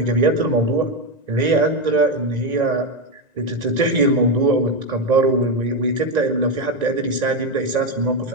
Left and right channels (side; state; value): left; late; 1.9 ms